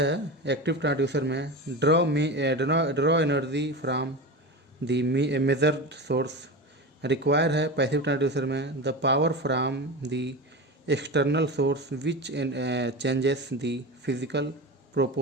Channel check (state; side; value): normal; both; correlation 0.26